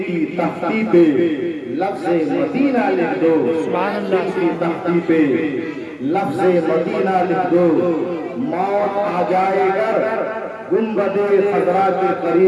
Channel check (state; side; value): identical; both; correlation 1.00